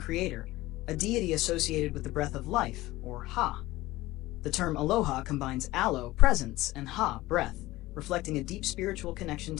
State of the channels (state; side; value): quieter; right; 18.1 dB